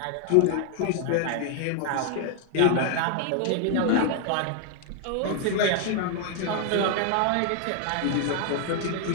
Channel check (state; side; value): different; both; correlation 0.00